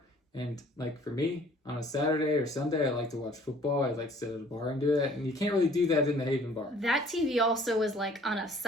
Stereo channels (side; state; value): both; normal; correlation 0.55